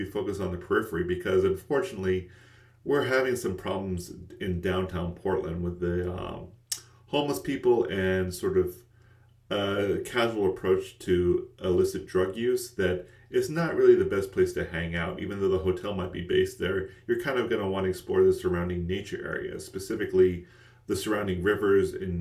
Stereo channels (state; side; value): identical; both; correlation 1.00